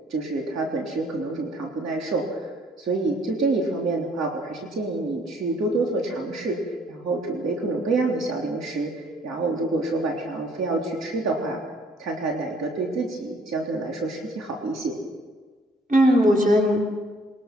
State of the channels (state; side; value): normal; both; correlation 0.61